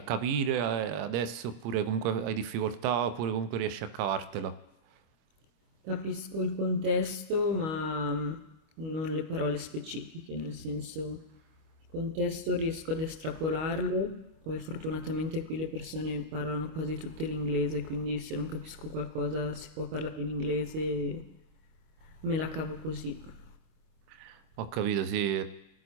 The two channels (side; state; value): left; late; 25 ms